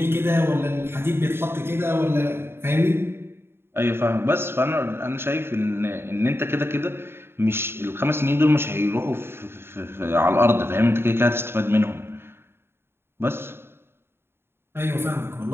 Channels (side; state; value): left; late; 0.11 ms